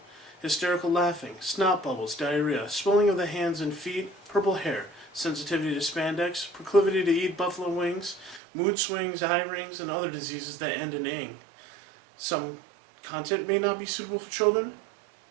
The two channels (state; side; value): drops out; left; at 8.4 s